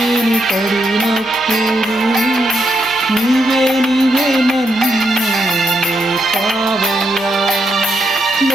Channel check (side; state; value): left; noise; hum, 27 dB below the sound